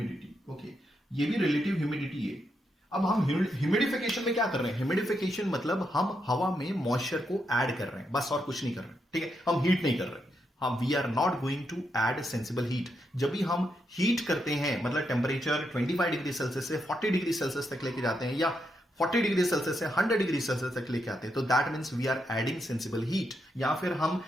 ओके। ये भी रिलेटिव ह्यूमिडिटी है। अब हम ह्यूमिडिफिकेशन में क्या कर रहे हैं, ह्यूमिडिफिकेशन मतलब हम हवा में मॉइस्चर को ऐड कर रहे हैं, बस और कुछ नहीं कर रहे हैं, ठीक है। हम हीट नहीं कर रहे हैं, हम we are not going to add sensible heat. जब भी हम हीट करते हैं, मतलब टेम्परेचर 25 डिग्री सेल्सियस से 40 डिग्री सेल्सियस तक लेके जाते हैं, या 40 डिग्री सेल्सियस से 100 डिग्री सेल्सियस तक लेके आते हैं, तो that means we are adding sensible heat. या फिर हम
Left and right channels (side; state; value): both; normal; correlation 0.81